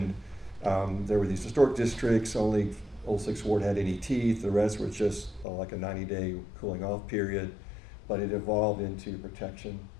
there were these historic districts, only Old Sixth Ward had any teeth, the rest were just like a 90-day cooling off period, but it evolved into protection.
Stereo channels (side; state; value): right; drops out; at 5.5 s